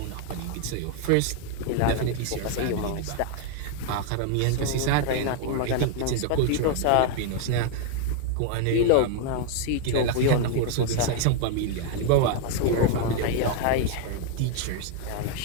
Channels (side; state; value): both; different; correlation 0.00